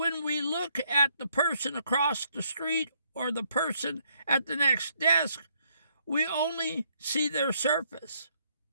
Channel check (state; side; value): inverted; both; correlation -0.72